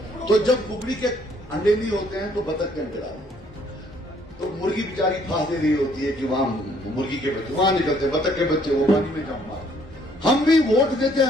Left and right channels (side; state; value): both; normal; correlation 0.64